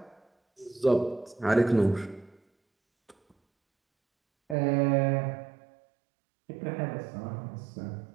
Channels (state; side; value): drops out; left; at 4.5 s